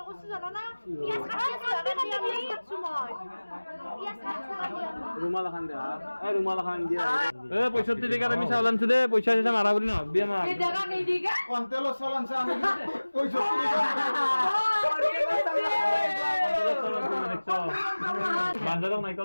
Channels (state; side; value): inverted; both; correlation -1.00